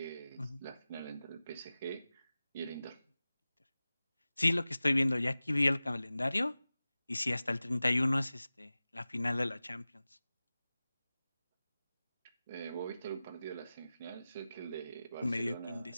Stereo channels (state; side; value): inverted; both; correlation -0.96